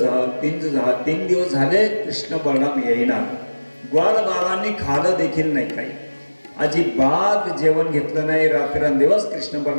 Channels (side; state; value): both; inverted; correlation -1.00